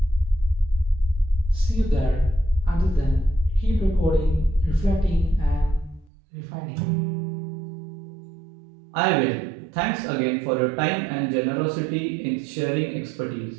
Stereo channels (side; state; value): left; drops out; at 6.1 s